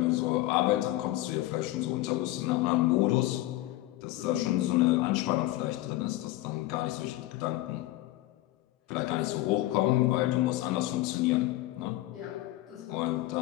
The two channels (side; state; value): right; quieter; 17.0 dB